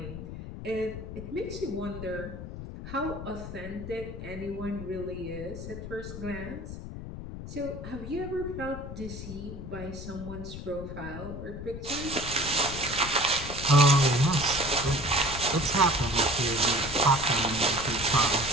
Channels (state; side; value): noise; left; rumble, 9 dB below the sound